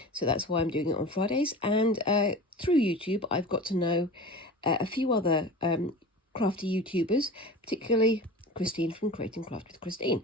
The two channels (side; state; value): both; normal; correlation 0.34